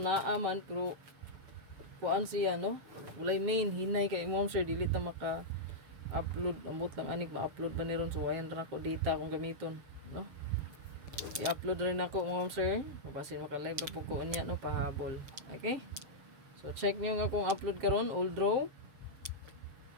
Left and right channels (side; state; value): left; late; 7.7 ms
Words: naaman, pero, kuan siya, no? Walay main, hinay kay mom sir, dili ta maka-upload, ambot lang anik, ma-upload ba ni ron, so ayan rin ako data akong gamiton, no? I-upload rin ako mga sir. Mapasin maka-live na po ko niya, no, pahabol. Okay? So, check nyo nga kung upload karon old draw.